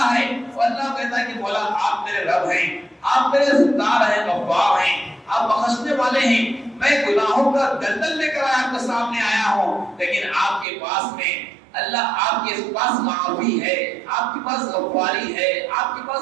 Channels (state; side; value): drops out; left; at 10.7 s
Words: ہے، وہ اللہ کہتا ہے کہ مولا آپ میرے رب ہیں، آپ میرے ستار ہیں، غفار ہیں، آپ بخشنے والے ہیں۔ میں گناہوں کا دلدل لے کر آپ کے سامنے آیا ہوں، لیکن آپ کے پاس میں اللہ، آپ کے پاس معافی ہے، آپ کے پاس غفاری ہے، آپ کے پاس